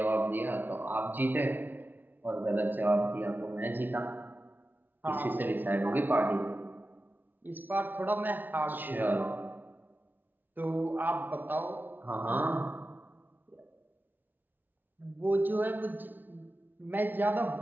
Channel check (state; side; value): late; left; 0.089 ms